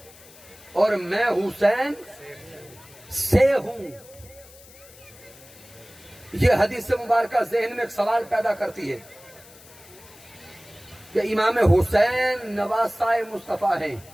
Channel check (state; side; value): noise; left; hiss, 22 dB below the sound